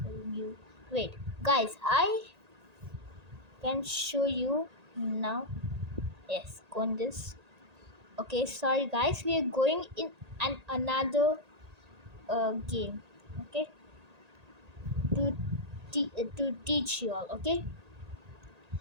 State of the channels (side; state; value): left; late; 1.8 ms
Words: tell you? Wait, guys, I can show you now. Yes, go on this. Okay, sorry guys, we are going in another game. Okay, to to teach you all. Okay,